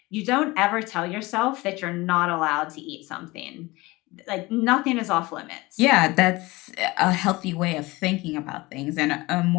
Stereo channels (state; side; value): quieter; right; 21.7 dB